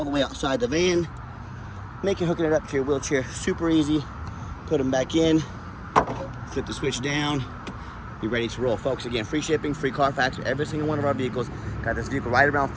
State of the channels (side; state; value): both; identical; correlation 1.00